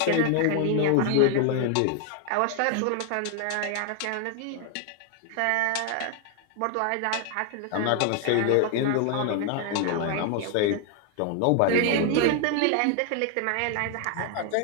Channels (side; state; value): both; different; correlation 0.00